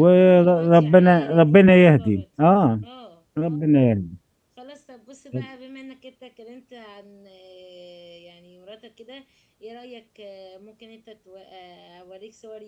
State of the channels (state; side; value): identical; both; correlation 1.00